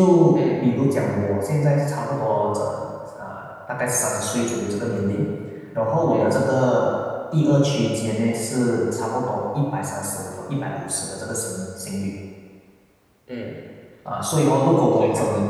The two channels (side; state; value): both; identical; correlation 1.00